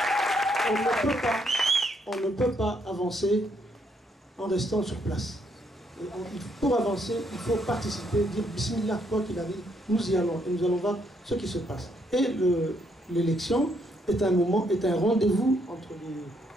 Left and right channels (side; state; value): both; normal; correlation 0.73